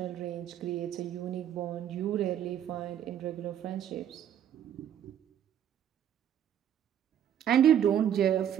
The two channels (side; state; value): left; quieter; 9.9 dB